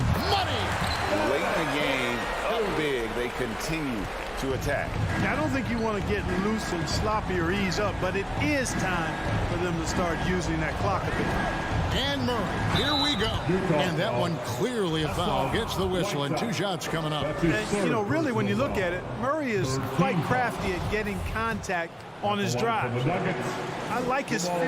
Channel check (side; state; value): both; identical; correlation 1.00